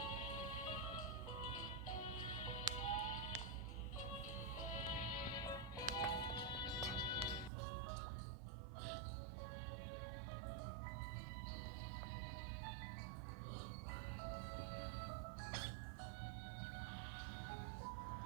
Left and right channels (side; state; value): left; drops out; at 7.5 s